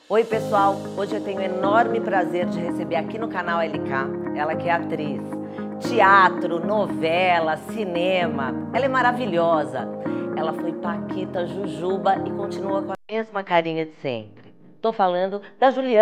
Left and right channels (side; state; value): both; identical; correlation 1.00